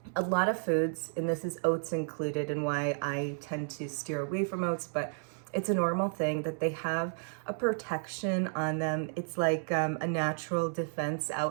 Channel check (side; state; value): left; silent; 56 dB below the other